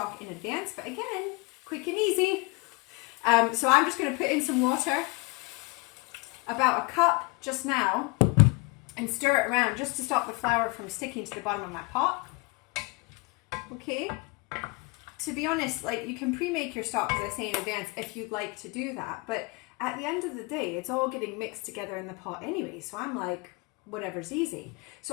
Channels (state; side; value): quieter; right; 27.1 dB